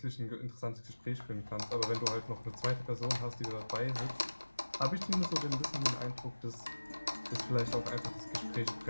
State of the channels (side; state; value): both; inverted; correlation -1.00